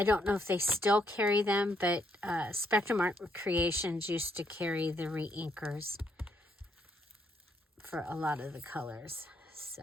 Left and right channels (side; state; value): both; normal; correlation 0.74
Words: don't know if they still carry them, but Spectrum Art Creations used to carry the re-inkers for a lot of the colors. So,